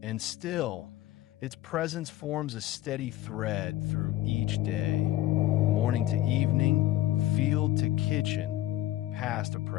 And still, its presence forms a steady thread through each day, morning to evening, field to kitchen, past to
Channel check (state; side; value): quieter; right; 14.7 dB